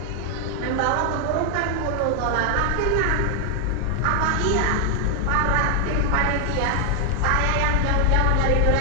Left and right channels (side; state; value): both; different; correlation 0.00